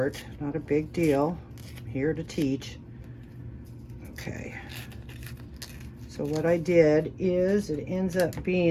Not a big deal. I'm here to teach. Okay. So what I did is it ends up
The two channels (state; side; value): identical; both; correlation 1.00